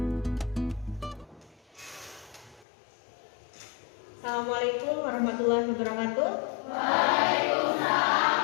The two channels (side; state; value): right; drops out; at 2.7 s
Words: Assalamualaikum warahmatullahi wabarakatuh.